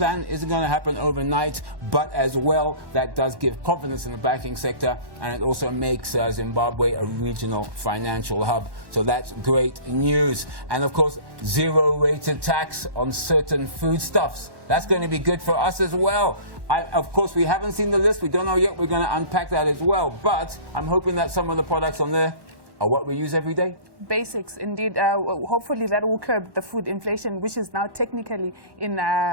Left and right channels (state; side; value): late; left; 1.1 ms